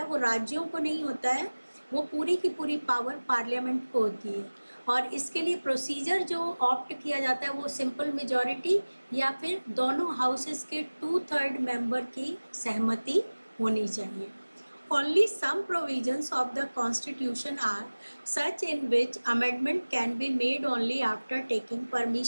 वो राज्यों को नहीं होता है, वो पूरी की पूरी पावर पार्लियामेंट को होती है. और इसके लिए प्रोसीजर जो ऑप्ट किया जाता है वो सिंपल मेजॉरिटी या फिर दोनों हाउसेस के 2/3 मेंबर की सहमति होनी चाहिए. Only some provisions of the constitution are such in which amendment can be made only after taking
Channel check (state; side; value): inverted; both; correlation -1.00